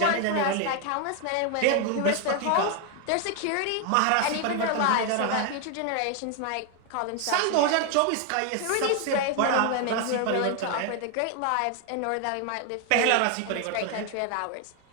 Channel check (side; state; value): both; different; correlation 0.01